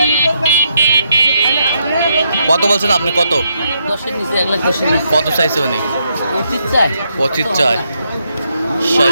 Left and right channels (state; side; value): inverted; both; correlation -0.79